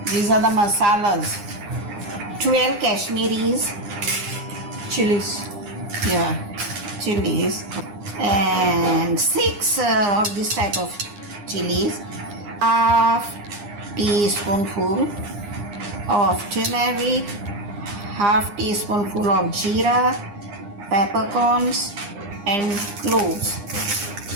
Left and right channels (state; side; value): late; left; 9.8 ms